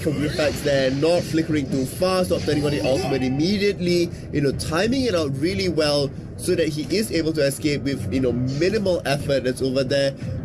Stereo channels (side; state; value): both; identical; correlation 1.00